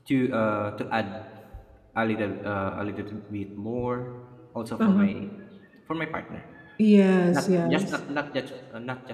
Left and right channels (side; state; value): both; identical; correlation 1.00